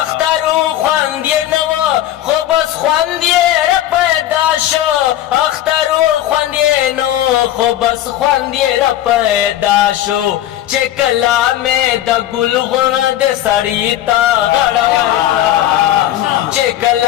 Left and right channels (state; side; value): quieter; right; 12.9 dB